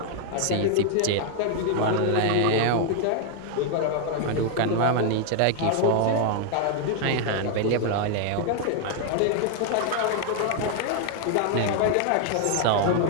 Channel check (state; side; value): different; both; correlation 0.00